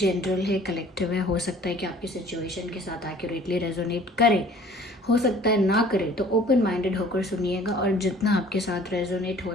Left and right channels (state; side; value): normal; both; correlation 0.51